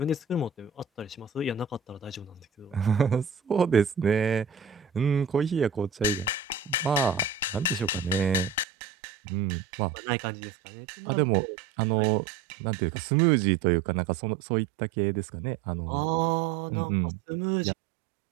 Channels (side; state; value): left; drops out; at 8.7 s